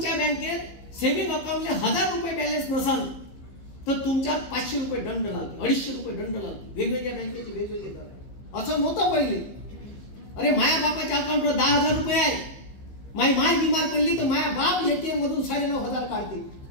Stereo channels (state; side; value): late; right; 15 ms